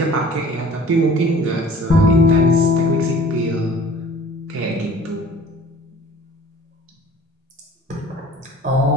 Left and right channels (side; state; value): both; normal; correlation 0.48